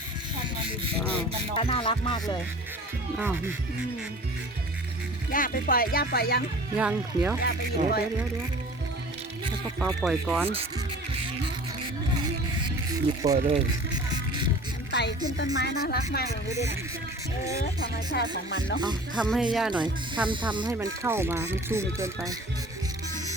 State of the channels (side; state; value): both; normal; correlation 0.43